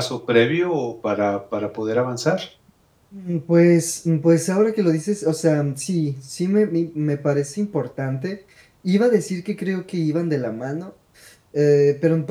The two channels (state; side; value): identical; both; correlation 1.00